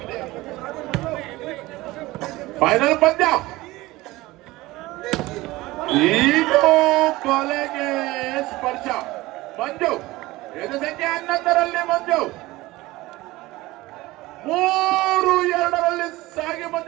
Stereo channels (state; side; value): quieter; left; 19.3 dB